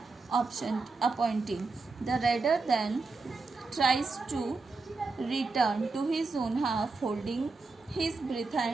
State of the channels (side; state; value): left; quieter; 3.9 dB